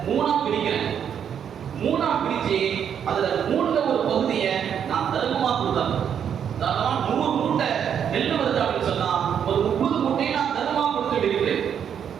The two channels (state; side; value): quieter; left; 8.3 dB